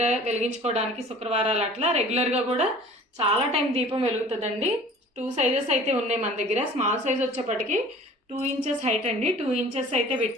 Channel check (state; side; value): normal; both; correlation 0.46